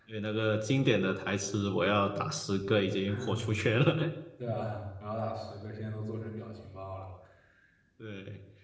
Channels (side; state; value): both; identical; correlation 1.00